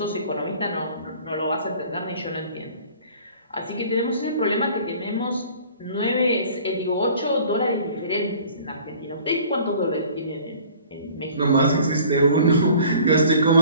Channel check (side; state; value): both; inverted; correlation -0.49